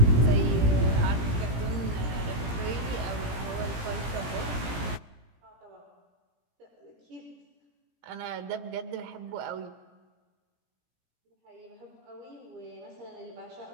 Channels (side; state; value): left; late; 17 ms